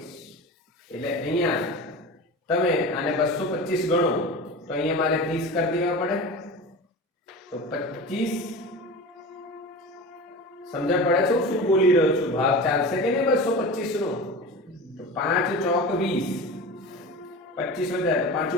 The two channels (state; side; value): normal; both; correlation 0.31